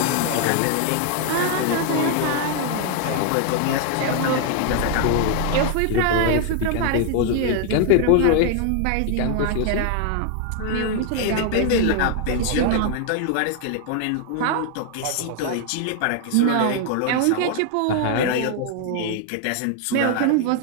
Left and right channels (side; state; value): both; different; correlation 0.00